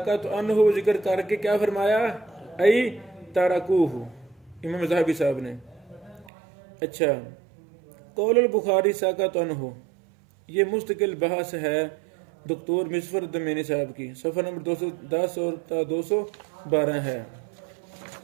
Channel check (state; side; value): drops out; left; at 6.3 s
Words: عنہ ذکر کر کے کیا فرمایا؟ ای تاراکوہ، امام ذہبی صاحب نے۔ اچھا، قول البخاری ساکات عنہ یہ مستقل بحث ہے دکتور مصفر الدمینی صاحب کی، صفحہ نمبر 210 اور 212 ہے۔